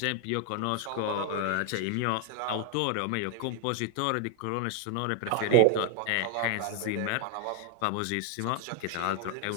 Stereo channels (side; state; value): both; different; correlation 0.01